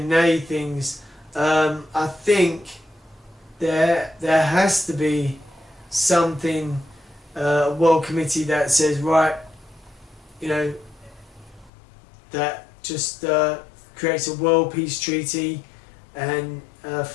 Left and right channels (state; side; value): drops out; right; at 11.7 s